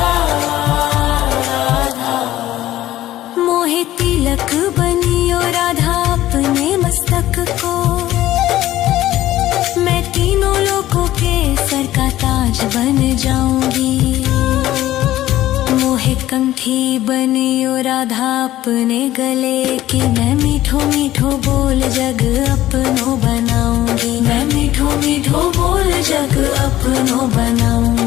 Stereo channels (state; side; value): quieter; right; 14.5 dB